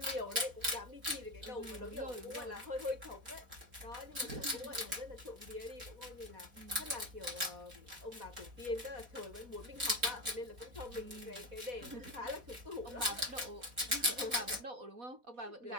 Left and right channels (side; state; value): left; late; 4.1 ms